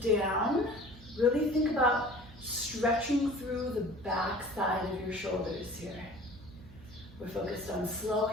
down. Really think about stretching through the back side of your shoulders here. We're focused on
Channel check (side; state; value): right; noise; hum, 20 dB below the sound